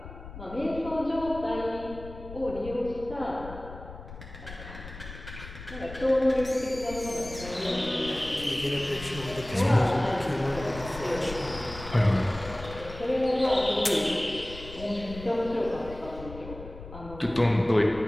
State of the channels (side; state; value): left; noise; rumble, 13 dB below the sound